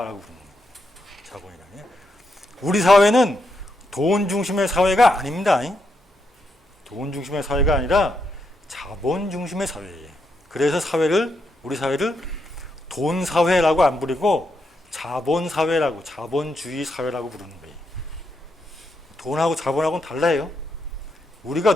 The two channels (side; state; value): both; normal; correlation 0.81